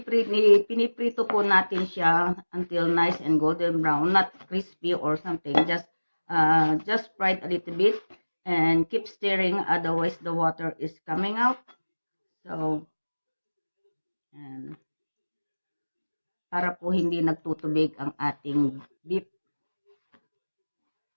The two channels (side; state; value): both; inverted; correlation -1.00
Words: po natin siya until nice and golden brown, not crispy or something, just fry it a little bit and keep stirring, otherwise the water is coming out. So, and para po hindi nagtutubig ang ating beef.